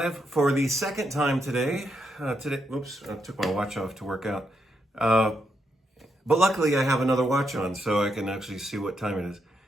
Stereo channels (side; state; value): both; normal; correlation 0.80